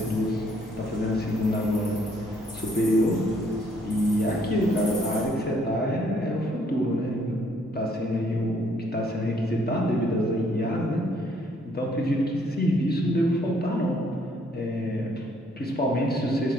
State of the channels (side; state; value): both; normal; correlation 0.66